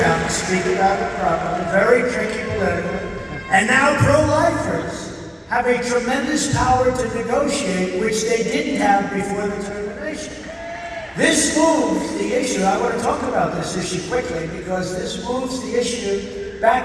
now speak about it properly, very tricky politically. And now pro-lifers have a tremendous power to negotiate, which they didn't have before the termination. This moves the issue, I want to talk about this issue quickly, because this moves the issue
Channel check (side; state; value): both; identical; correlation 1.00